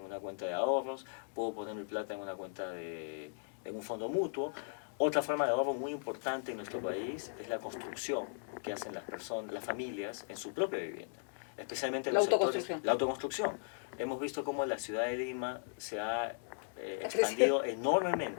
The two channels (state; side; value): silent; right; digital silence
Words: cuenta de ahorros, puedo poner mi plata en una cuenta en un fondo mutuo. Otra forma de ahorro muy importante en nuestro país es la construcción que hacen las familias en su propia vivienda, especialmente en los sectores. La autoconstrucción. Hemos visto cómo la ciudad de Lima se ha expandido